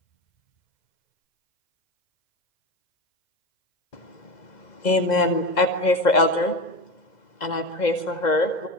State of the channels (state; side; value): late; right; 2.0 ms